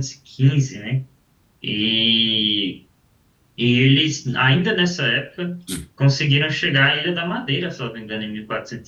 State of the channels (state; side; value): identical; both; correlation 1.00